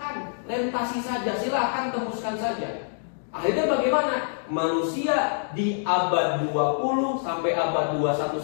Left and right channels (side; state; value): right; silent; digital silence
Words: lintasi saja, silahkan tembuskan saja. Akhirnya bagaimana? Manusia di abad 20 sampai abad 21